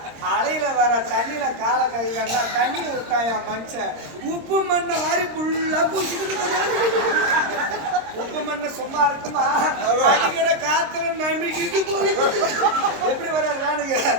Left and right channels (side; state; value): left; late; 26 ms